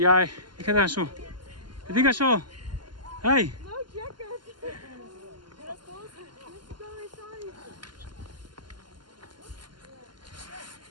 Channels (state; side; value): late; left; 0.71 ms